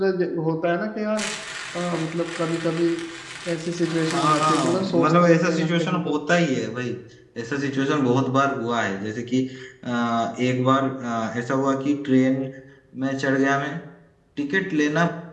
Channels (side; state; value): both; identical; correlation 1.00